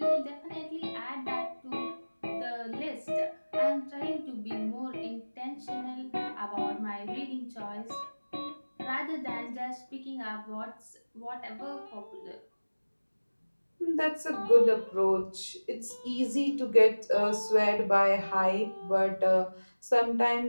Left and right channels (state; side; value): inverted; both; correlation -1.00